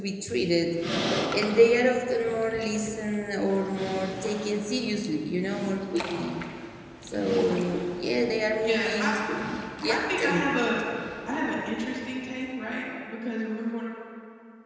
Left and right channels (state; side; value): identical; both; correlation 1.00